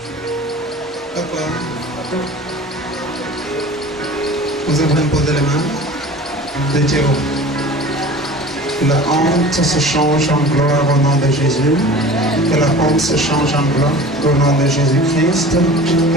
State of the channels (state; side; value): normal; both; correlation 0.40